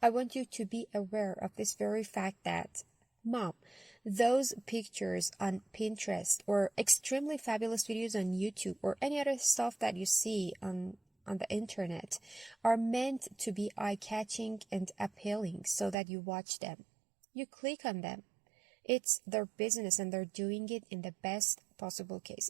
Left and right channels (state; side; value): drops out; left; at 16.0 s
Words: want you to be aware of this very fact that, Mom, those pictures on Pinterest or extremely fabulous videos on YouTube or any other stuff that you see on the internet are meant to be eye-catching and appealing so that you watch them. You click on them. It's their business and they're doing it in the best possible case.